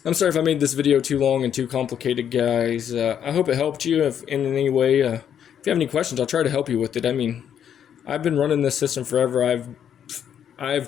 I'm sorry if I made this video too long and too complicated, guys. I hope it helped you in any way. If you have any questions, I'll try to help you with it. I mean, I've been running this system forever.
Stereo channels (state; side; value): quieter; right; 9.0 dB